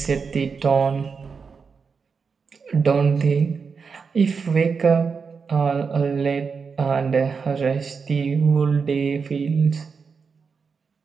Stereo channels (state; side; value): quieter; left; 5.4 dB